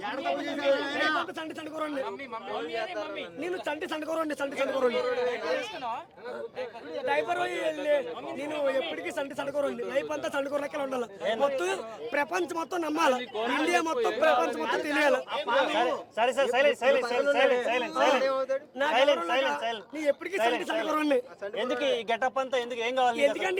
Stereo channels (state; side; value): identical; both; correlation 1.00